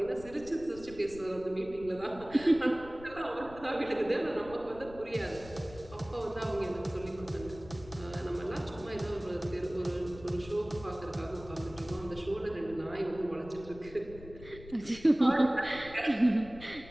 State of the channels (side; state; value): left; noise; rumble, 17 dB below the sound